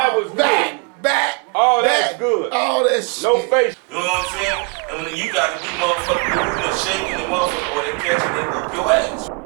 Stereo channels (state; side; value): quieter; left; 31.9 dB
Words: was back. All that's good. All that shit. No face. You know what I'm saying? And when you gotta be motherfucking moving and shaking and motherfucking, or they catch you, they whoop your ass.